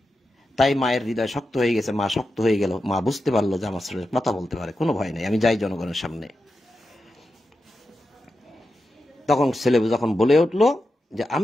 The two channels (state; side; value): normal; both; correlation 0.89